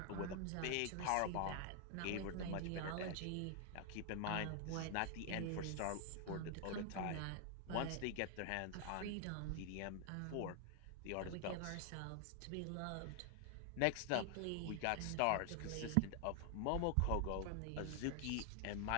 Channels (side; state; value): both; different; correlation 0.00